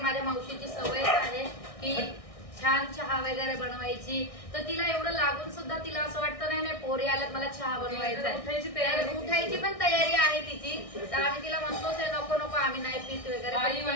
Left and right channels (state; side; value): late; right; 1.6 ms